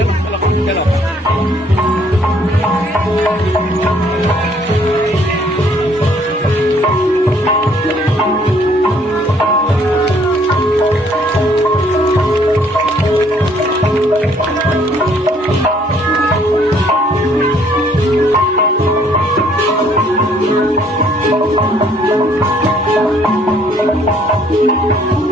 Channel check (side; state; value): both; normal; correlation 0.63